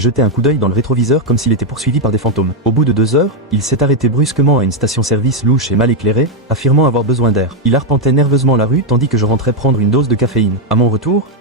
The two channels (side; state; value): both; normal; correlation 0.02